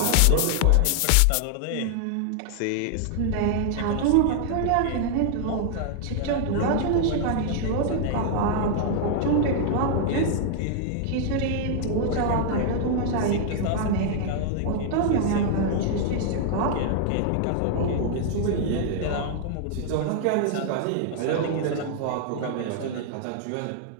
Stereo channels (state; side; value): different; both; correlation 0.00